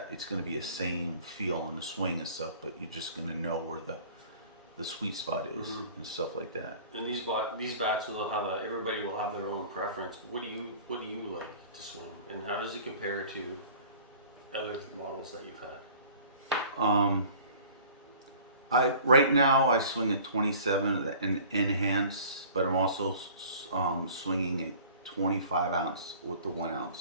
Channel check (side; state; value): both; inverted; correlation -0.47